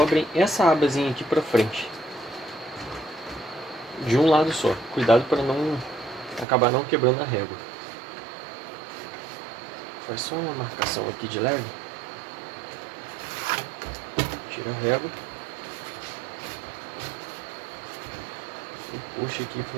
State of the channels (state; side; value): drops out; left; at 6.5 s